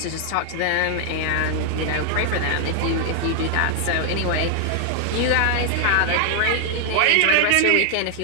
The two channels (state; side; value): different; both; correlation 0.00